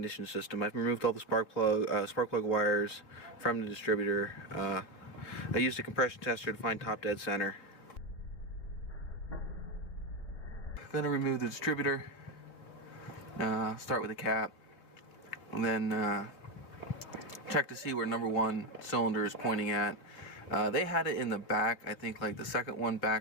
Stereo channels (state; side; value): late; right; 3.5 ms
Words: system. I've removed all the spark plug wires from the distributor. I used a compression tester to find top dead center. I'm going to remove the distributor, start with the cap, and then check to see where number 1 cylinder is pointing at. They had it in the back, I think like the second one